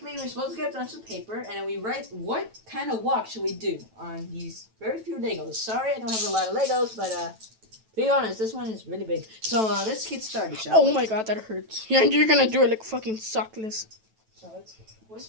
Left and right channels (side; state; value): left; late; 9.1 ms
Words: we're supposed to get a bunch of paper and then we write what kind of walk should we do on these very few Legos. Sorry, I don't have a lot of Legos, but be honest, this one is really big. So let's get started, shall we? Oh my God, that hurts. Yeah, you're gonna do it like fucking sockless. So we're